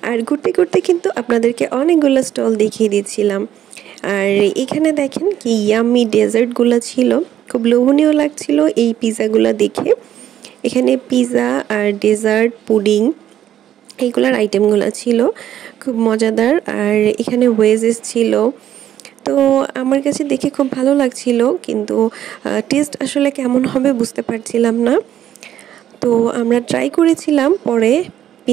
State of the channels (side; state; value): left; quieter; 11.2 dB